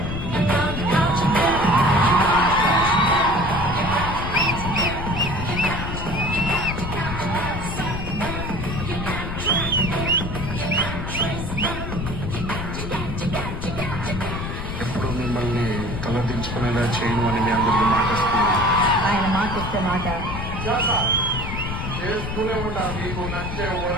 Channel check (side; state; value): left; noise; rumble, 5 dB below the sound